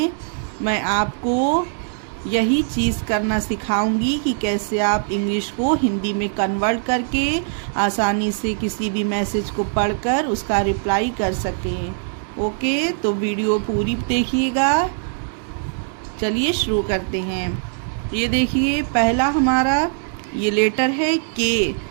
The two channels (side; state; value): left; silent; 65 dB below the other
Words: मैं आपको यही चीज़ करना सिखाऊंगी कि कैसे आप इंग्लिश को हिंदी में कन्वर्ट करके आसानी से किसी भी मैसेज को पढ़कर उसका रिप्लाई कर सकें। ओके, तो वीडियो पूरी देखिएगा। चलिए शुरू करते हैं। ये देखिए, पहला हमारा ये लेटर है के।